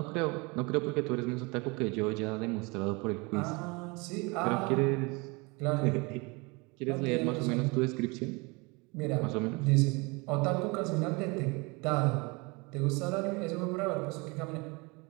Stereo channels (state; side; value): quieter; left; 27.5 dB